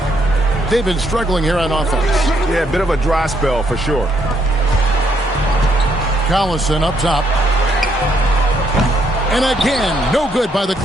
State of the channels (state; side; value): normal; both; correlation 0.72